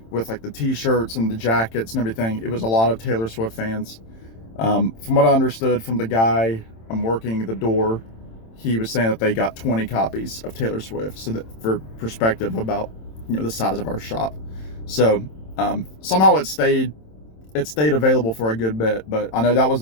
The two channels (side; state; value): right; late; 27 ms